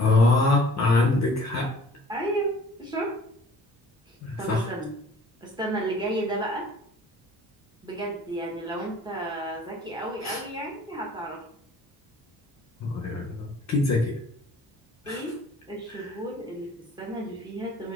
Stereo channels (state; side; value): normal; both; correlation 0.52